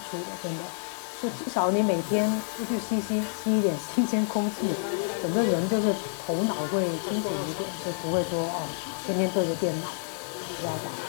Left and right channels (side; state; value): right; silent; digital silence